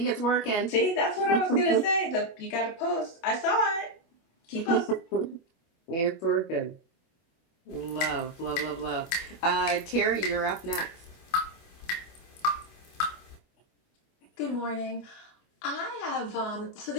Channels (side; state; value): right; late; 24 ms